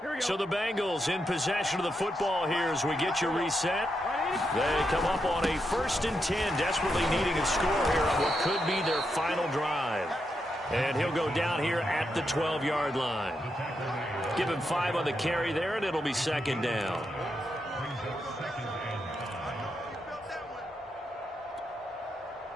So the Bengals in possession of the football here as we get you reset. They come up on a 1st and 10, desperately needing a score here on what could be their final drive. And he'll go down here at the 12-yard line. Give him 5 on the carry there, and it'll be second down.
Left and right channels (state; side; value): normal; both; correlation 0.83